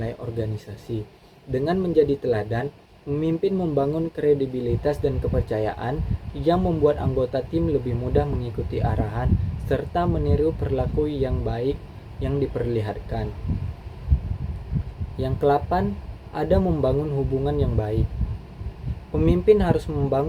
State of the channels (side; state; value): both; identical; correlation 1.00